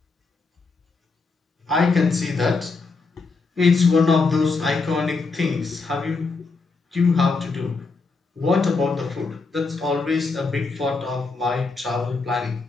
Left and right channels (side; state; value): right; quieter; 4.1 dB